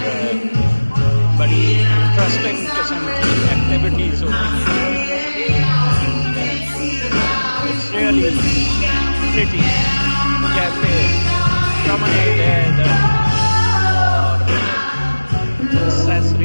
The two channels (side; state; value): both; inverted; correlation -1.00